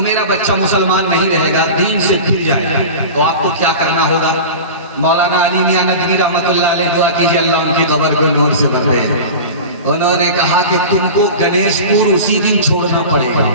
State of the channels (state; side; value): inverted; both; correlation -0.32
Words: मेरा बच्चा मुसलमान नहीं रहेगा, दीन से फिर जाएगा, तो आपको क्या करना होगा? मौलाना अली मियां नदवी रहमतुल्लाह अलैह, दुआ कीजिए अल्लाह उनकी कब्र को नूर से भर दे। उन्होंने कहा कि तुमको गणेशपुर उसी दिन छोड़ना पड़ेगा।